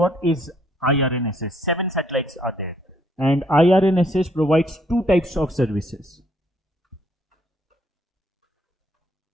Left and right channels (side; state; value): both; normal; correlation 0.68